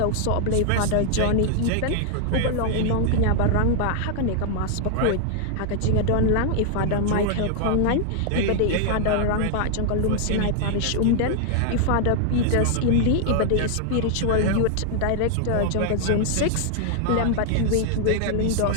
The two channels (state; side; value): different; both; correlation 0.00